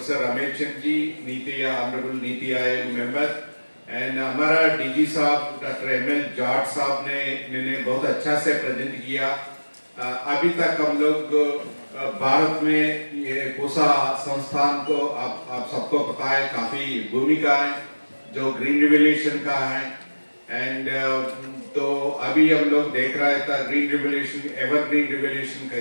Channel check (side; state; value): both; inverted; correlation -1.00